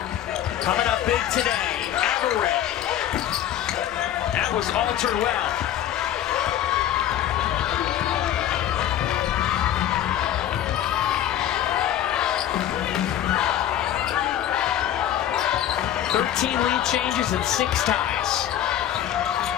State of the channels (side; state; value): right; quieter; 11.3 dB